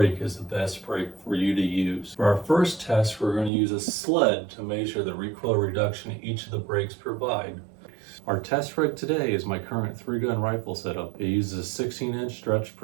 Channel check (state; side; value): drops out; left; at 3.5 s